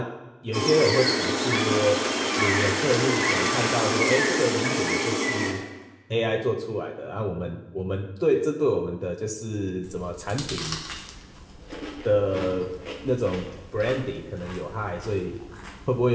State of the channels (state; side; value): identical; both; correlation 1.00